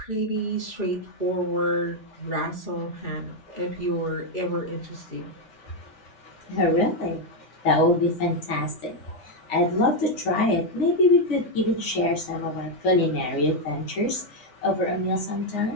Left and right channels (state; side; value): late; right; 3.4 ms